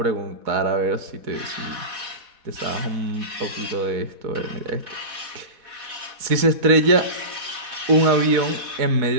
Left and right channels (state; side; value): late; left; 4.1 ms